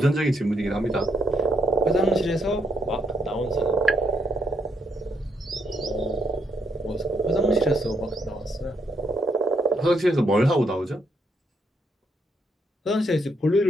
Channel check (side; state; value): both; normal; correlation 0.75